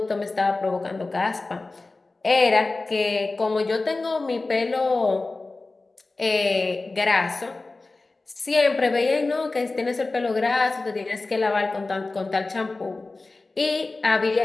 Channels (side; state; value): right; quieter; 3.4 dB